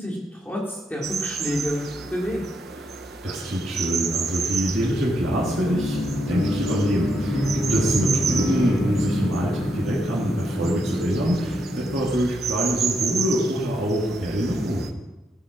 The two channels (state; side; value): normal; both; correlation 0.79